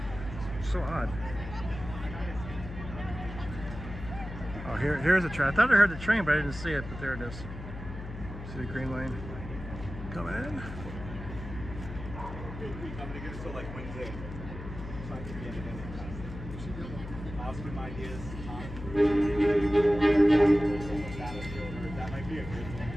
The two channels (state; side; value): noise; left; hum, 10 dB below the sound